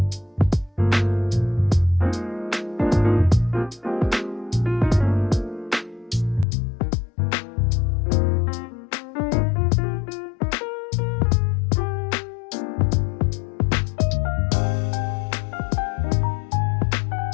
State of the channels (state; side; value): drops out; right; at 6.5 s